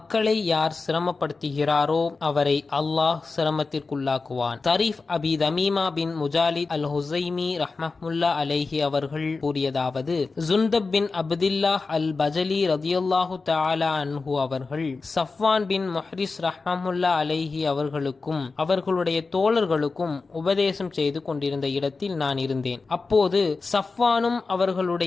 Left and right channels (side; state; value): right; quieter; 4.1 dB